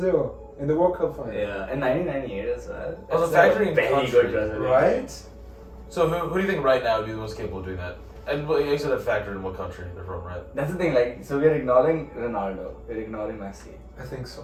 in the World Cup final. Yeah, in 1998 as well. Well, the That's factory in very country, good Brazilian. Right? So who do you think right now would be the most capable of doing that? And well, you said that factor in what country they're from, right? That's the thing, like, so we're ignoring Ronaldo, we're ignoring Messi. I think so.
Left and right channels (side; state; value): both; identical; correlation 1.00